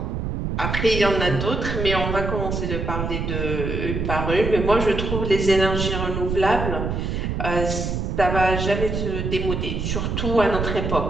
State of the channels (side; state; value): right; noise; rumble, 2 dB below the sound